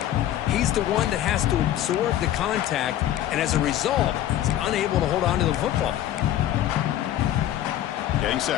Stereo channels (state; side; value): quieter; right; 12.3 dB